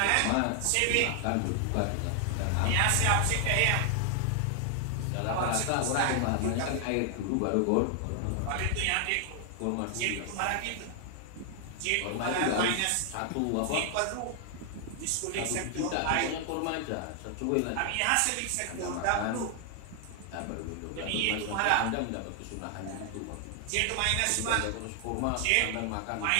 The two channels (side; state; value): both; different; correlation 0.00